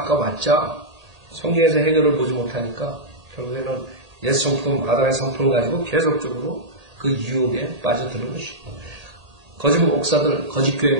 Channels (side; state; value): left; late; 1.8 ms